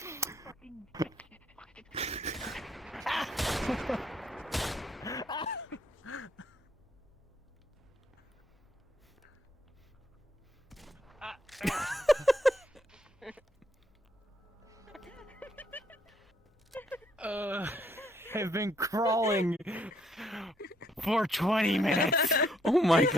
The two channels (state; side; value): normal; both; correlation 0.70